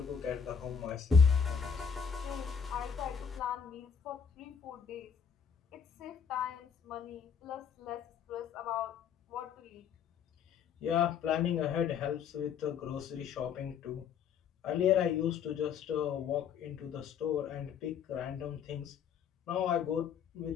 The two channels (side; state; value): right; quieter; 7.1 dB